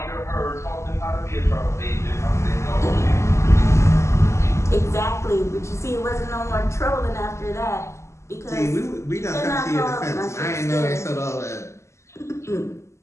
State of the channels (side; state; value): right; late; 0.13 ms